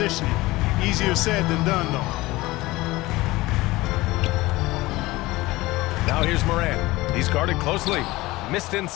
Easier said than done, though. Now here's Morant. He's guarded closely. Missed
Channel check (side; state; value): right; quieter; 19.7 dB